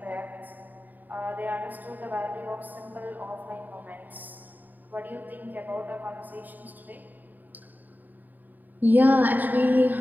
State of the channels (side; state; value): left; late; 0.086 ms